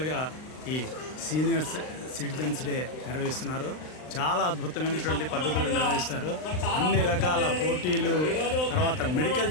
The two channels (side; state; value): right; late; 39 ms